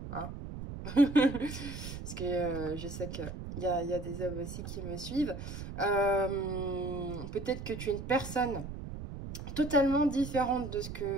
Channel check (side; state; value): right; noise; rumble, 8 dB below the sound